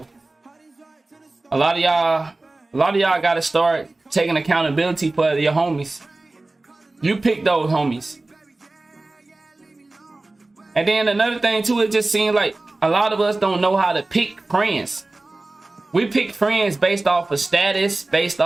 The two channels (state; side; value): quieter; left; 3.0 dB